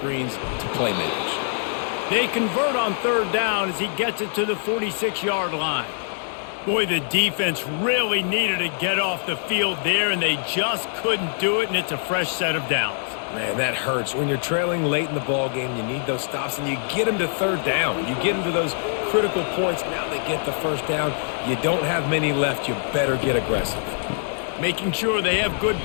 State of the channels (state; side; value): silent; right; digital silence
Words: to playmakers. They convert on third down as he gets it to the 46-yard line. Boy, the defense really needed to get off the field there, and they just couldn't do it, and it's a fresh set of downs. Man, that hurts. When you're trailing late in the ball game, you need those stops, and you get them to third down. You get them to those critical points. Now they get the first down. You don't have many left. You better get aggressive. Making sure they have good